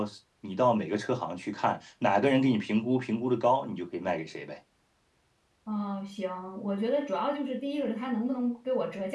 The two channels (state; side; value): identical; both; correlation 1.00